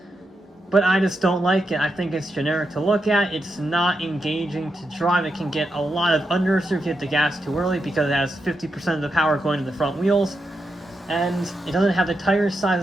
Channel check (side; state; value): both; normal; correlation 0.85